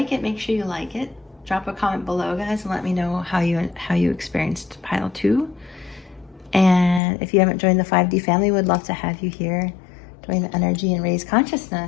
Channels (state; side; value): drops out; right; at 7.0 s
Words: it, make sure you like it. Drop a comment below, guys, and let me know how you experienced pile 2. And if you haven't joined the 5D family, would love to have you here. Join the energy and raise